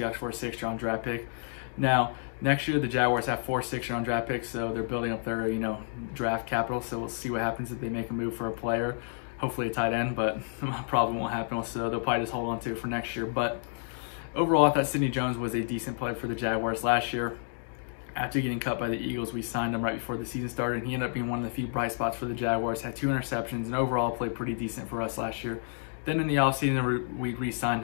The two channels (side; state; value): right; silent; digital silence